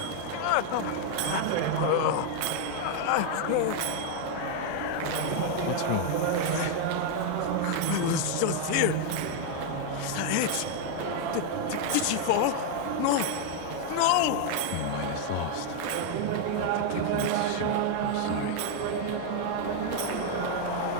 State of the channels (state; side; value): different; both; correlation 0.00